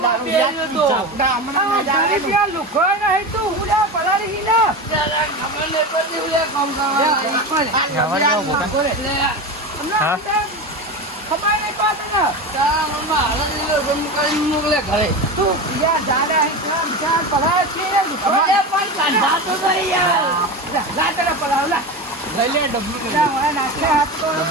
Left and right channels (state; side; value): normal; both; correlation 0.24